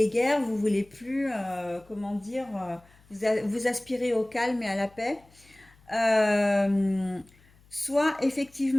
vous voulez plus, comment dire, vous aspirez au calme et à la paix. Euh, Soit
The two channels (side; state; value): left; noise; hum, 29 dB below the sound